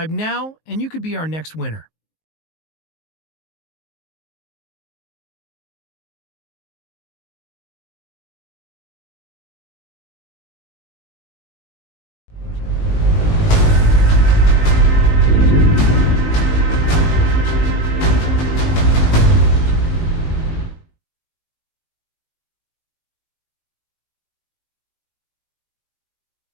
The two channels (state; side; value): late; right; 19 ms